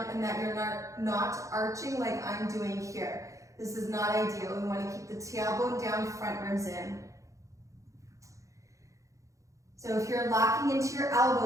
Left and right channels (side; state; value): left; late; 0.15 ms